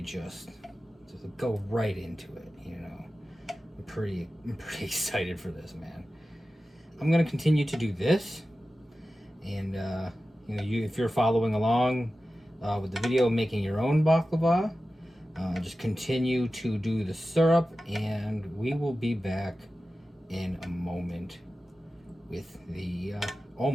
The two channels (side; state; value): both; normal; correlation 0.94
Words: just go right into it, you know. I'm pretty excited for this, man. I'm gonna continue to do this, and you know, if you're following along with the video, making your own baklava, just continue to do the syrup, and we will be back in a moment with the